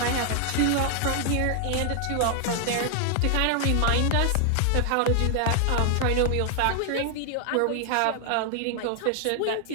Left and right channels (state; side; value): different; both; correlation 0.00